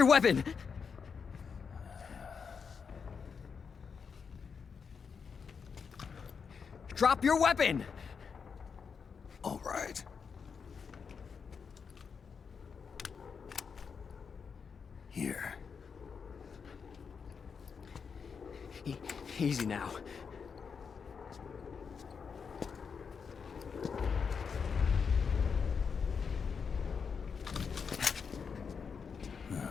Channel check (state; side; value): quieter; right; 6.0 dB